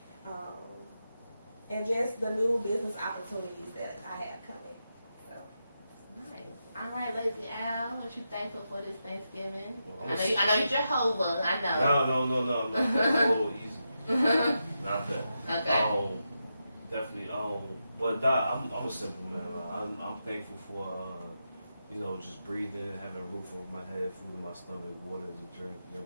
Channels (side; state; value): both; inverted; correlation -0.87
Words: and just the new business opportunities that I have coming. So. Nice. All right, Lazy Al, what you thankful for this Thanksgiving? Well, I know you're Jehovah. I know. No. That's a little easy. Not that. Okay. Definitely. But I'm a simple man. I'm thankful for you know, just breathing, having a roof over my head, food in my stomach, water to drink. You know